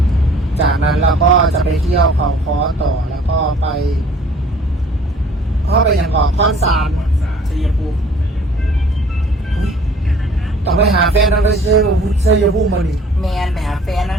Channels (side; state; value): both; normal; correlation 0.53